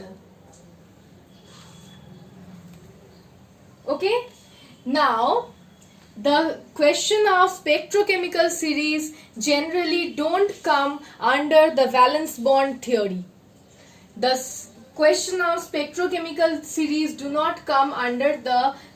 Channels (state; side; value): identical; both; correlation 1.00